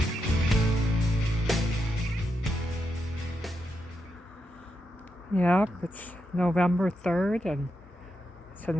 Yep, it's November 3rd and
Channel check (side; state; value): both; normal; correlation 0.85